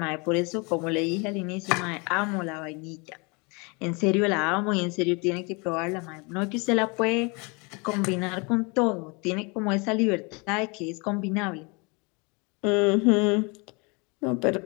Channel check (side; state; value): right; quieter; 30.0 dB